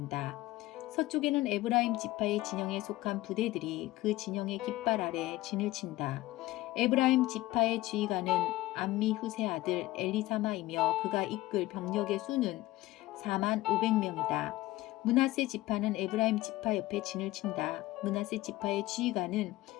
서쪽에는 에브라임 지파의 진영에 속한 부대들이 그 진영의 깃발 아래 진을 친다. 에브라임 지파의 지휘관은 암미후세 아들 엘리사마이며 그가 이끌 병력의 수는 4만 500명이다. 므낫세 지파는 에브라임 지파 옆에 진을 친다. 므낫세 지파의 지휘관은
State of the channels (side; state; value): right; quieter; 17.6 dB